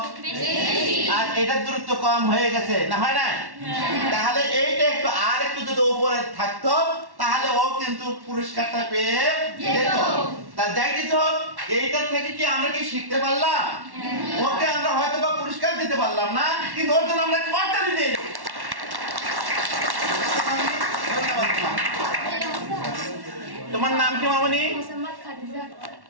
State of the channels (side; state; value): left; late; 1.1 ms